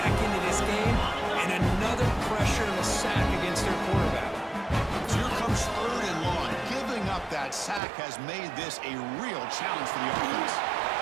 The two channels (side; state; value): left; drops out; at 7.8 s